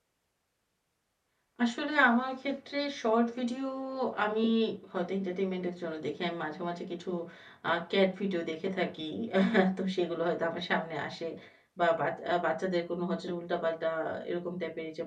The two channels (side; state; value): both; identical; correlation 1.00